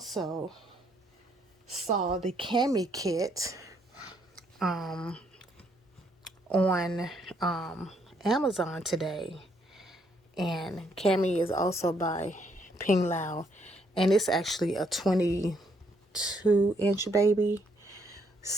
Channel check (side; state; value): both; normal; correlation 0.71